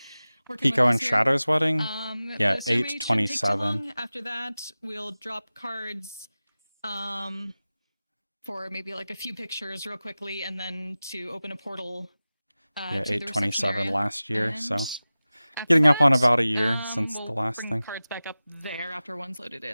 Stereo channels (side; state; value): both; inverted; correlation -0.97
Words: working with Pico us and here. Shadow's wedding. Yeah, The ceremony shouldn't take too 8/27. long. After that, we'll drop cards for maybe like a few pictures real quickly, and then to open a portal. Yeah, to the reception 8/27 area. last year, so And after getting up on that, about a year since we'll the last bring thing. cards back up there after one's loaded